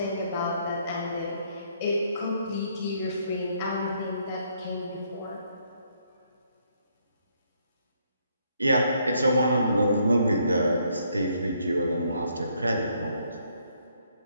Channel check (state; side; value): inverted; both; correlation -0.70